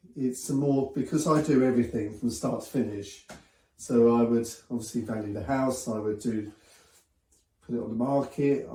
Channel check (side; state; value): both; identical; correlation 1.00